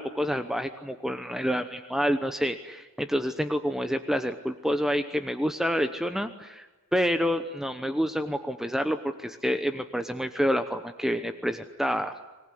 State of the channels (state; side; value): normal; both; correlation 0.90